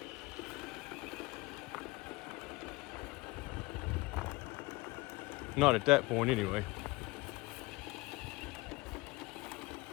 Not at that point anyway.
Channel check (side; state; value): right; quieter; 22.9 dB